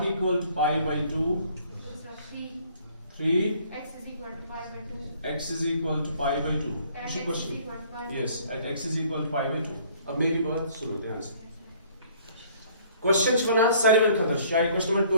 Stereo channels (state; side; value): inverted; both; correlation -0.58